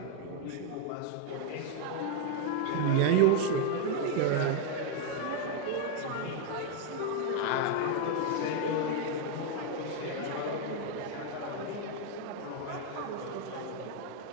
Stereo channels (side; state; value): both; different; correlation 0.01